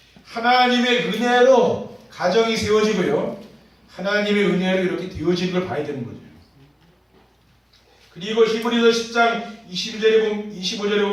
하나님의 은혜로 가정이 세워지고요. 하나님의 은혜로 이렇게 되어지는 걸 봐야 되는 거죠. 그리고 히브리서 10장 25절에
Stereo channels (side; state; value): both; identical; correlation 1.00